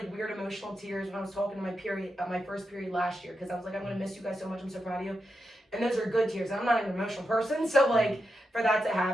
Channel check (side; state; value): both; normal; correlation 0.87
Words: weird emotional tears when I was talking to my first period last year because I was like, I'm gonna miss you guys so much. I'm so proud of you. And those are good tears. I'm not an emotional person, so like for that to